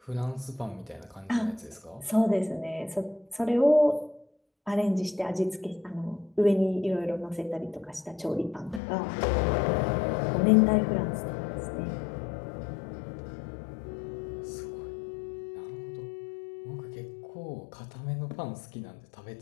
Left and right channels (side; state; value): right; drops out; at 8.8 s